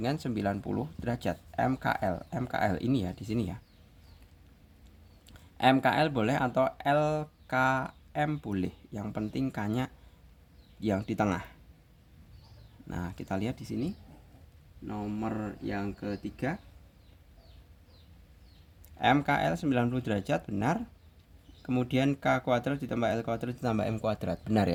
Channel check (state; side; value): identical; both; correlation 1.00